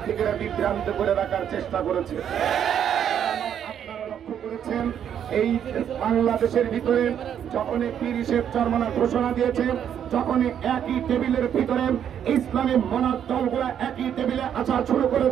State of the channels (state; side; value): quieter; left; 9.1 dB